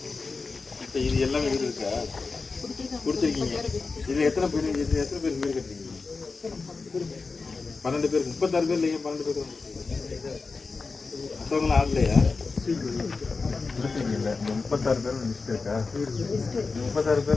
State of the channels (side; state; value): right; quieter; 4.3 dB